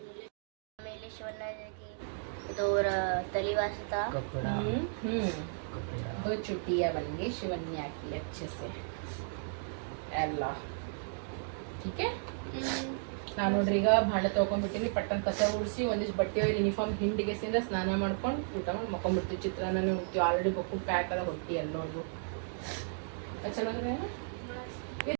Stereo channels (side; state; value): left; silent; digital silence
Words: छुट्टियाँ बन गई शिवन्या की अच्छे से ಎಲ್ಲ ठीक है. ನಾನು ನೋಡ್ರಿ ಈಗ ಭಾಂಡೆ ತೊಗೊಂಡ್ಬಿಟ್ಟಿನಿ, ಪಟ್ಟನ್ ಕಸ ಉಡಿಸಿ ಒಂದಿಷ್ಟು ಬಟ್ಟೆ ಯೂನಿಫಾರ್ಮ್ ಹಿಂಡಿಗೆಸಿಂದ ಸ್ನಾನ ಮಾಡ್ಕೊಂಡು ಊಟ ಮಾಡಿ ಮಕ್ಕೊಂಡ್ಬಿಡ್ತೀವಿ. ಚಿತ್ರಾನ್ನ ಉಣ್ತೀವಿ, ಆಲ್ರೆಡಿ ಬಕ್ಕು ಪ್ಯಾಕ್ ಅದ ಹೊಟ್ಟಿ ಎಲ್ಲೋದು ಚೆನ್ನಾಗಿದೆ.